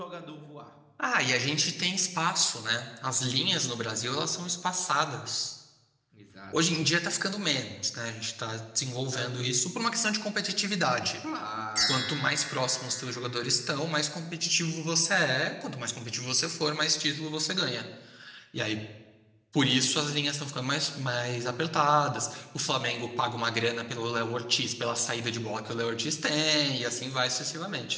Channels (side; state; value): both; identical; correlation 1.00